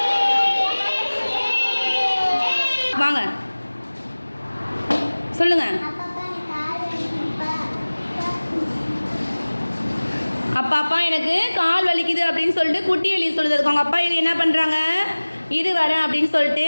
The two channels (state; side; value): inverted; both; correlation -1.00